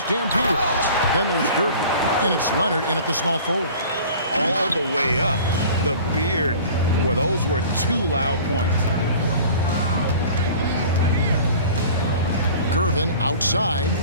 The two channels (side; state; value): both; inverted; correlation -0.44